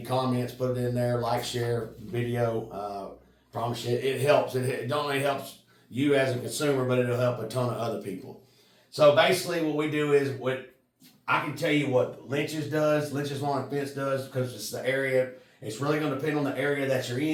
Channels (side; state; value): both; identical; correlation 1.00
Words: comments, put it in there. Like, share video. Promise you, it helps. It not only helps you as a consumer, but it'll help a ton of other people. So basically, what we do is I can tell you what Lynch's Lawn and Fence does, because it's the area. It's really going to depend on the area that you're